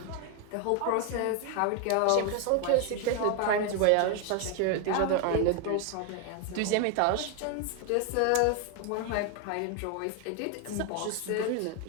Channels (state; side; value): different; both; correlation 0.01